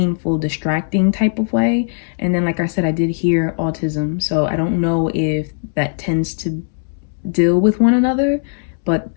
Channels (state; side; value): silent; right; 67 dB below the other